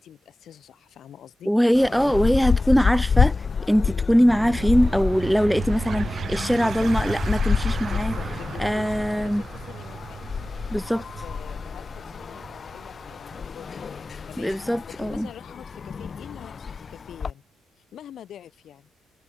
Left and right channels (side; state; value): both; normal; correlation 0.95